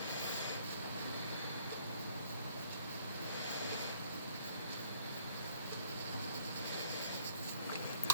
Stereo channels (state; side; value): inverted; both; correlation -0.60